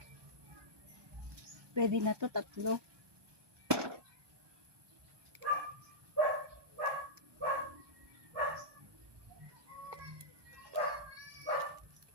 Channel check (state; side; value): late; left; 1.2 ms